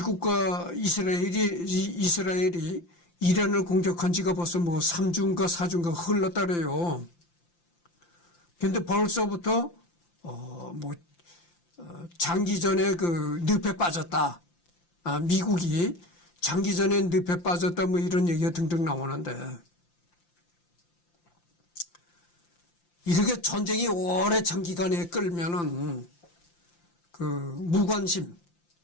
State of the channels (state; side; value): late; right; 5.8 ms